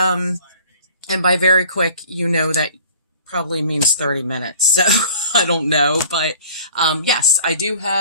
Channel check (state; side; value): inverted; both; correlation -0.47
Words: by very quick, that probably means 30 minutes. So I don't know. But yes, I do